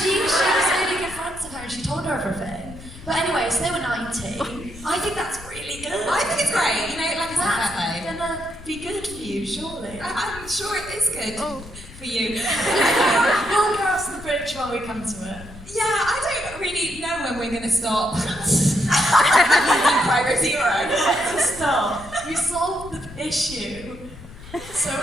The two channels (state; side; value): noise; left; rumble, 16 dB below the sound